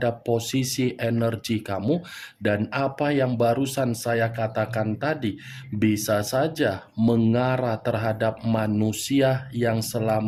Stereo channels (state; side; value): identical; both; correlation 1.00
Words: posisi energi kamu, dan apa yang barusan saya katakan tadi bisa saja mengarah terhadap manusia yang